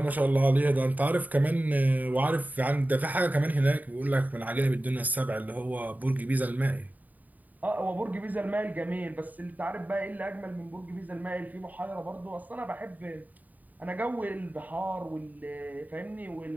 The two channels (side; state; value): left; late; 0.080 ms